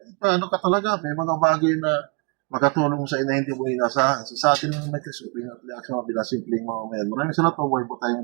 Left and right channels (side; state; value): left; quieter; 33.0 dB